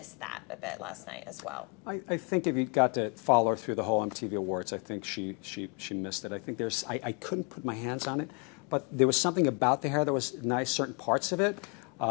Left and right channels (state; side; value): quieter; right; 33.2 dB